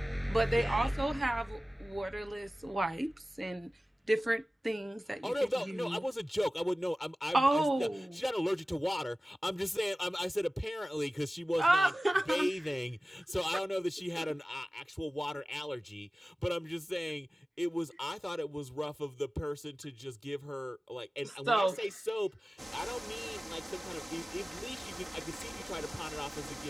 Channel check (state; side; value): normal; both; correlation 0.97